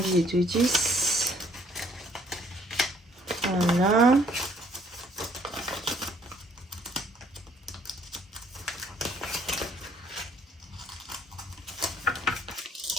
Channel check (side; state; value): both; normal; correlation 0.63